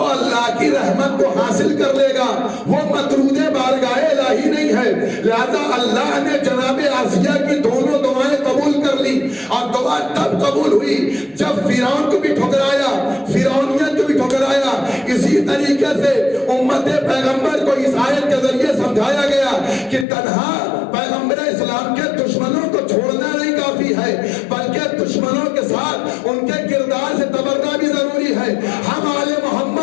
اللہ کی رحمت کو حاصل کر لے گا وہ مطرود بارگاہ الہی نہیں ہے۔ لہذا اللہ نے جناب آسیہ کی دونوں دعائیں قبول کر لی، اور دعا تب قبول ہوئی جب فرعون کو بھی ٹھکرایا، فرعونیت کو بھی ٹھکرایا۔ اسی طریقے سے امت پیغمبر کو اس آیت کے ذریعے سمجھایا گیا کہ تنہا پیغمبر اسلام کے دشمنوں کو چھوڑنا نہیں کافی ہے، بلکہ دشمنوں کے ساتھ ان کے کردار سے تبرہ بھی ضروری ہے۔ ہم آل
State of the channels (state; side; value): drops out; right; at 20.1 s